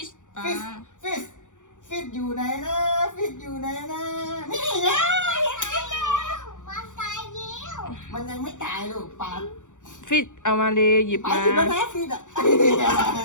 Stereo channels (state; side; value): late; right; 0.86 ms